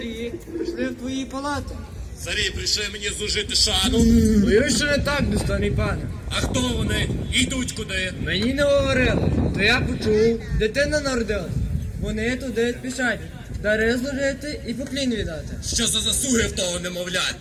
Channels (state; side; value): identical; both; correlation 1.00